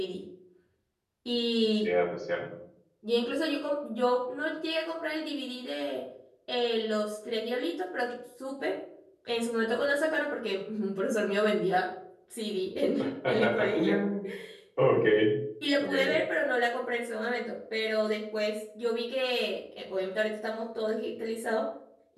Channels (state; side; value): identical; both; correlation 1.00